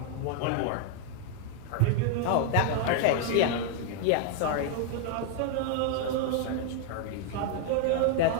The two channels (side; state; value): both; different; correlation 0.00